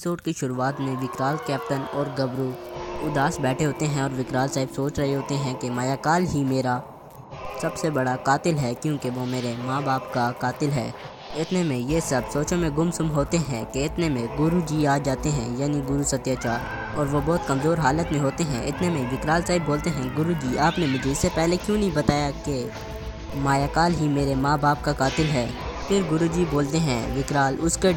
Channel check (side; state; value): both; identical; correlation 1.00